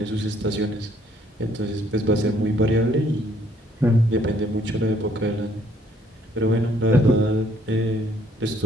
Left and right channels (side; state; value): both; normal; correlation 0.65